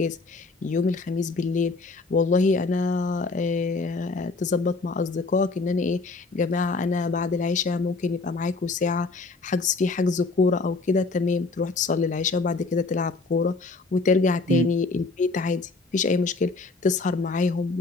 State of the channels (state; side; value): quieter; right; 3.7 dB